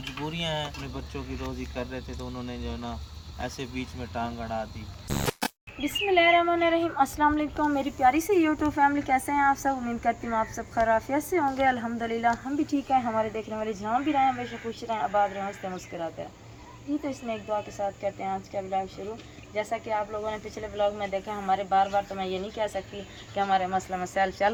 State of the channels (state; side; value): identical; both; correlation 1.00